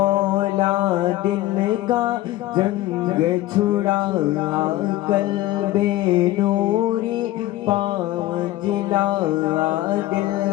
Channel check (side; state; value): right; quieter; 16.3 dB